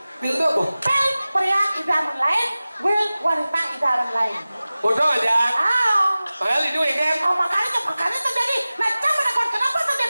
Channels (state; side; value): inverted; both; correlation -0.97